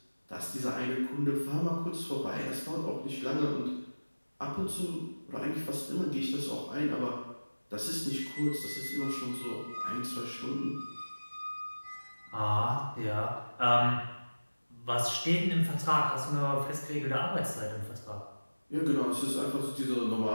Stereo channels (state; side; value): inverted; both; correlation -1.00